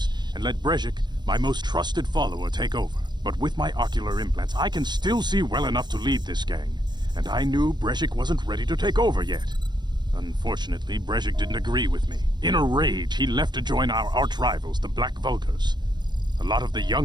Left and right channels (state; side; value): late; left; 0.21 ms